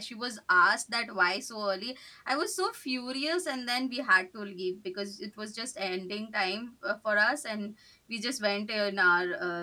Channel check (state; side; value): identical; both; correlation 1.00